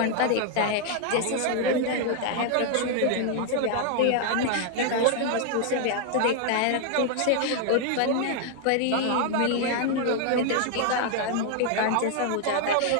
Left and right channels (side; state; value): both; different; correlation 0.00